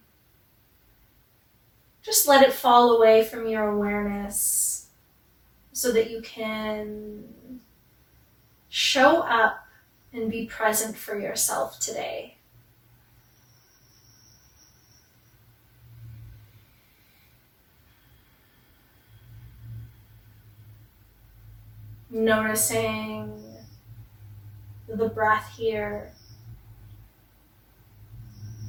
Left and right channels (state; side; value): identical; both; correlation 1.00